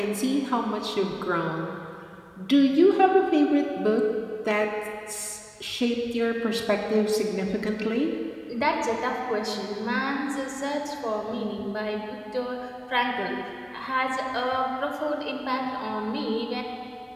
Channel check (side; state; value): both; identical; correlation 1.00